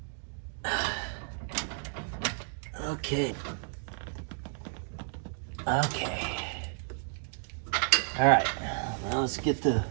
Okay. Okay. All right, now let's get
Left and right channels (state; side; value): silent; left; 56 dB below the other